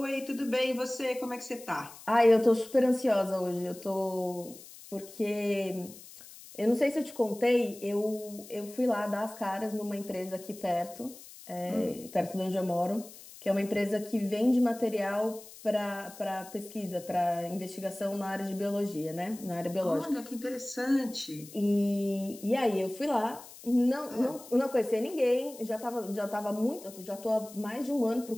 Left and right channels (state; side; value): noise; left; hiss, 18 dB below the sound